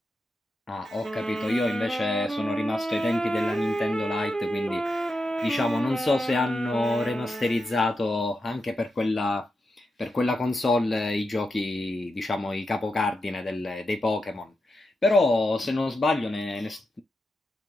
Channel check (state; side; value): normal; both; correlation 0.87